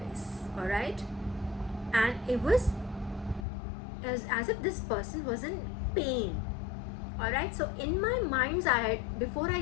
all right, and it was as if this person was in pain. All right, so in my mind's eye, before I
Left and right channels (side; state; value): right; drops out; at 3.5 s